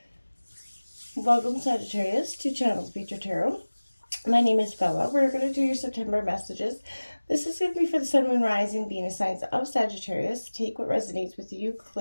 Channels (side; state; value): both; inverted; correlation -1.00